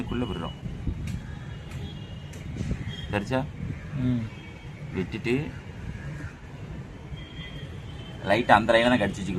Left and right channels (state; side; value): identical; both; correlation 1.00